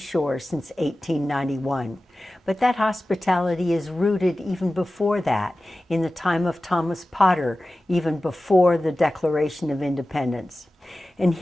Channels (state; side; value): normal; both; correlation 0.96